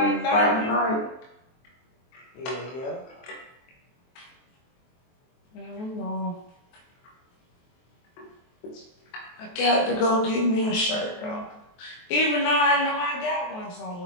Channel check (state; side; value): late; right; 23 ms